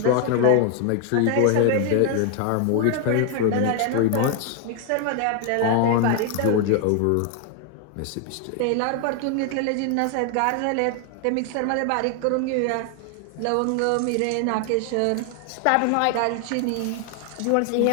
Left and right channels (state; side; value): different; both; correlation 0.00